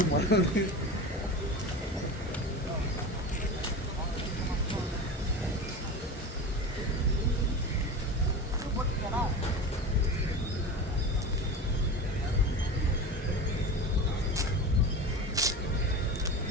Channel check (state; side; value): normal; both; correlation 0.29